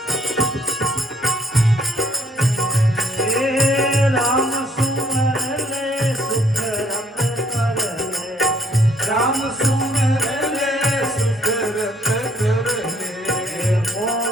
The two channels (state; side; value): normal; both; correlation 0.65